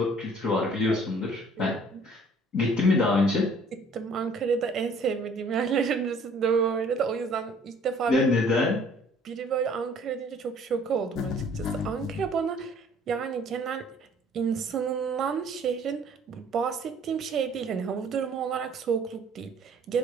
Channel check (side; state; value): both; normal; correlation 0.56